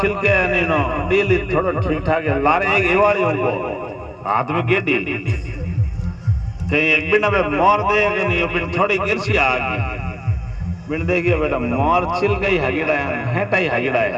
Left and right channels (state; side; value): identical; both; correlation 1.00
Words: छिलके है नहीं नो डील थोड़ा ठीक ठाक है। लारे एक एवाड़ी उनको हाथ में गेडी कहीं एक बिना में मोर देगा नहीं, बिन थोड़ी गिरसी आ गई बिन देखिए बेटा मोर छिलके ही हगिड़ा है, हेटा ही हगिड़ा